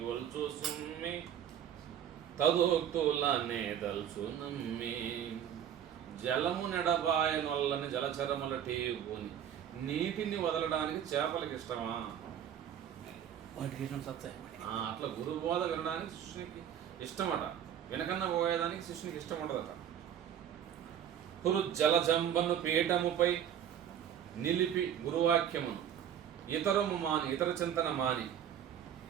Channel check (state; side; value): quieter; left; 9.6 dB